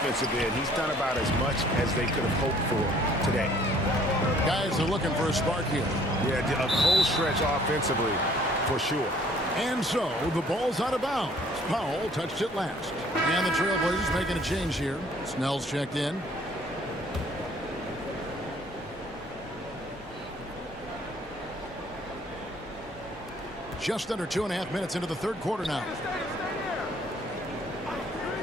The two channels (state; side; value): normal; both; correlation 0.58